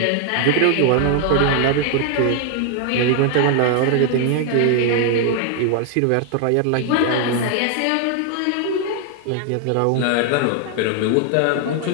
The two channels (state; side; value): different; both; correlation 0.00